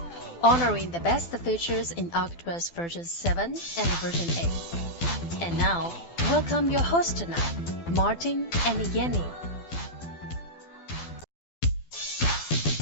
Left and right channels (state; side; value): late; right; 12 ms